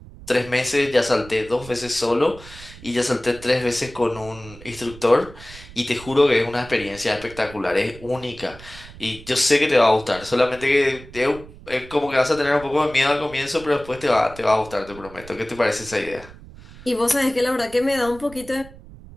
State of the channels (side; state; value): right; noise; rumble, 18 dB below the sound